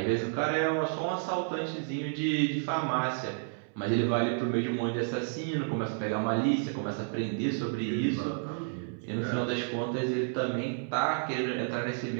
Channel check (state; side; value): silent; left; 57 dB below the other